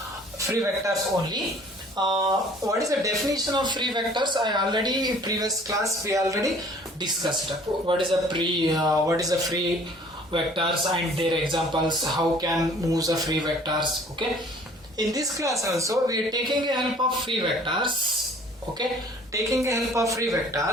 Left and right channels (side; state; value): both; normal; correlation 0.53